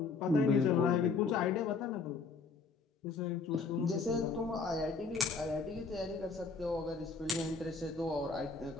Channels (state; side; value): quieter; right; 4.6 dB